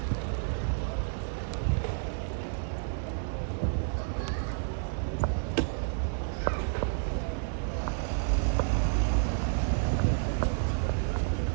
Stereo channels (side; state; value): left; silent; digital silence